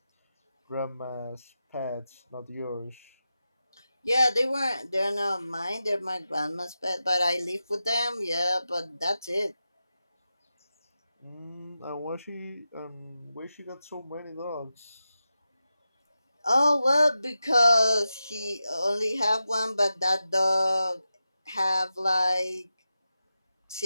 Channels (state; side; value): inverted; both; correlation -0.91